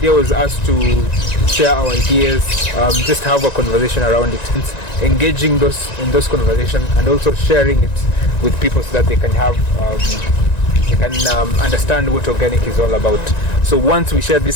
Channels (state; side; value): late; right; 1.9 ms